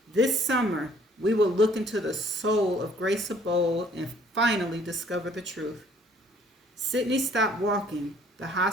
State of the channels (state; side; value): normal; both; correlation 0.59